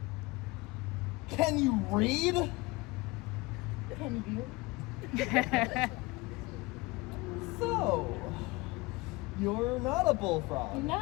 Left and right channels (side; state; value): right; quieter; 23.2 dB